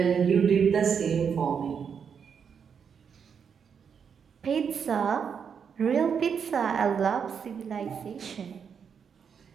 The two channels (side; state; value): left; quieter; 6.9 dB